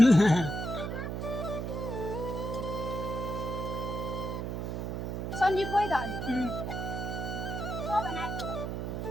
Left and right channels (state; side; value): noise; right; hum, 3 dB below the sound